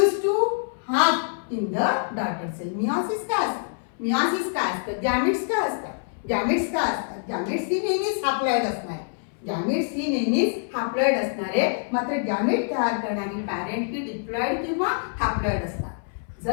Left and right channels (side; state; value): right; silent; 61 dB below the other